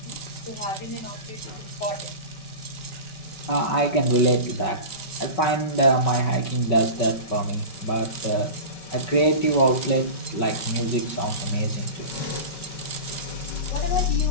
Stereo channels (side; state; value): right; late; 5.3 ms